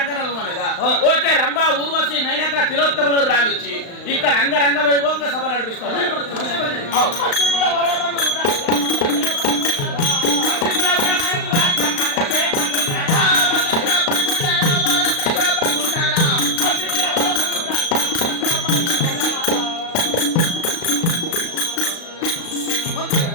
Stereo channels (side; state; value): right; late; 35 ms